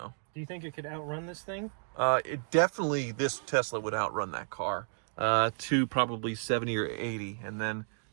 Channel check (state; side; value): silent; left; digital silence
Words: Do you think it could outrun this thing? This Tesla would outrun that car to probably 70 or 80, and then